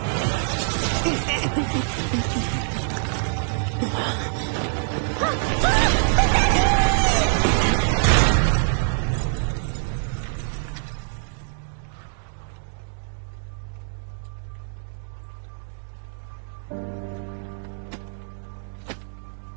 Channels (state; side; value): silent; left; 62 dB below the other